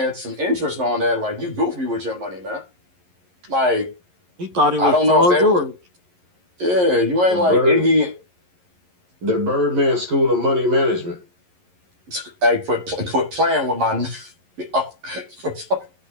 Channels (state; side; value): late; left; 11 ms